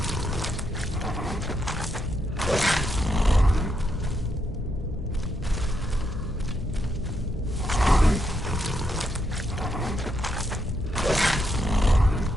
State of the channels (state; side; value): normal; both; correlation 0.79